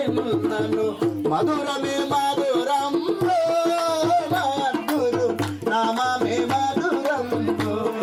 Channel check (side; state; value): both; identical; correlation 1.00